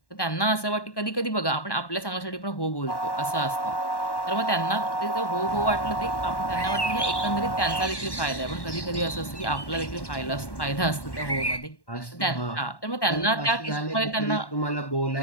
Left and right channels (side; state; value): right; late; 1.1 ms